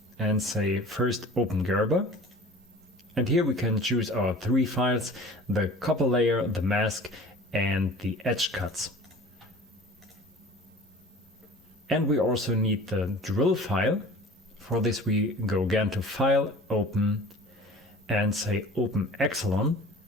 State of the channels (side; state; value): both; normal; correlation 0.43